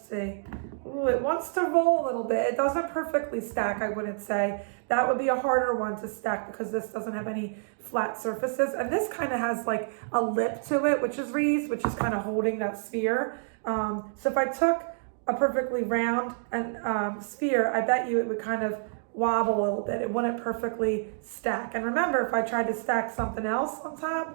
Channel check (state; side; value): silent; left; digital silence